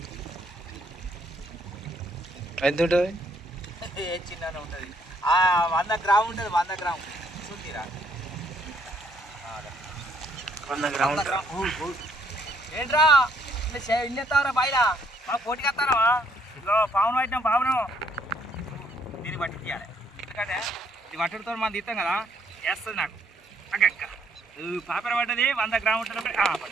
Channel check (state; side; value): normal; both; correlation 0.69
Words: ఎంత ఉంటుంది ఏ చిన్ననే ఉంటుంది 100 గ్రాము ఉంటుంది 100 గ్రాము చూసిరా 100 గ్రాములు ఏంట్రా ఇల్లు ఎత్తావరా బయట మాకు పోటీకి వస్తారా ఇదిగో పావును పట్టినాం పావును దీన్ని పట్టి తీయాలి ఎందుకంటే ఇది పట్టుడితో మనం తీస్తాం కదా వేస్తుంది నాకు అక్క పాపర పడ్డది 100 గ్రాము ఉంటుంది